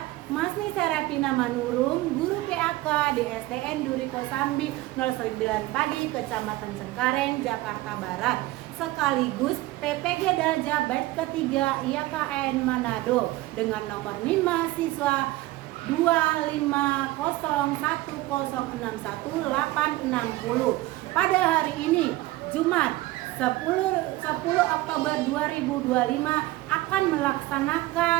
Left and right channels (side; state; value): left; quieter; 18.3 dB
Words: Masni Serafina Manurung, guru PAK di SDN Duri Kosambi 09 Pagi, Kecamatan Cengkareng, Jakarta Barat, sekaligus PPG Dalja Batch ketiga IAKN Manado dengan nomor NIM mahasiswa 25010618660. Pada hari ini, Jumat 10 Oktober 2025 akan